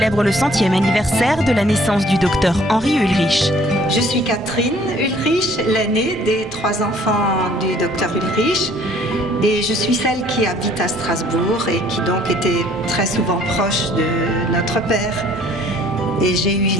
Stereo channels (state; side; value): normal; both; correlation 0.58